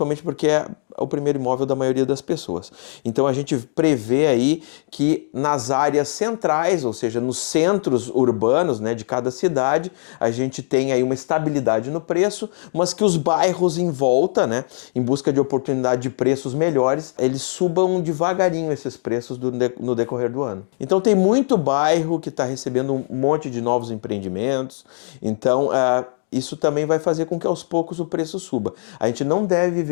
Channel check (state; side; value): silent; right; 65 dB below the other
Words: porque é o primeiro imóvel da maioria das pessoas. Então, a gente prevê aí que nas áreas centrais, ou seja, nos centros urbanos, né, de cada cidade, a gente tem aí uma estabilidade no preço, mas que os bairros em volta, né, em busca de oportunidade de preços melhores, eles subam devagarinho esses preços no decorrer do ano. Então, tem muito bairro que está recebendo um monte de novos empreendimentos, então isso também vai fazer com que aos poucos o preço suba. A gente não deve